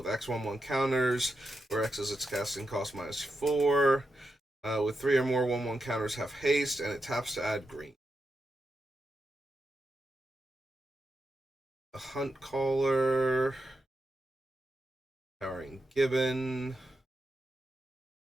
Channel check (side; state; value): both; normal; correlation 0.87